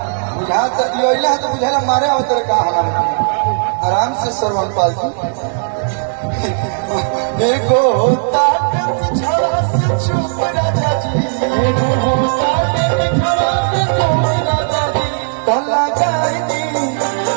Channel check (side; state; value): left; silent; 69 dB below the other